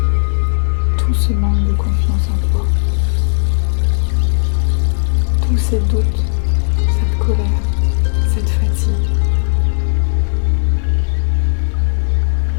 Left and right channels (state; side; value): silent; right; 56 dB below the other